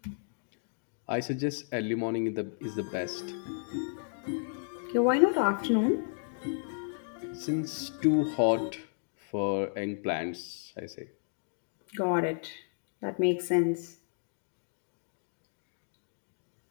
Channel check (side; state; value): right; silent; digital silence